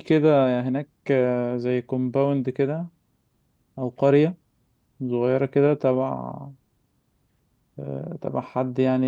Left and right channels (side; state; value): both; identical; correlation 1.00